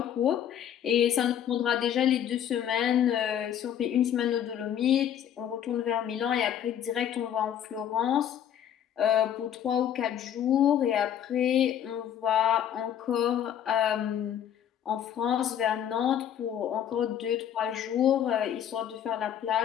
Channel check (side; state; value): right; quieter; 9.7 dB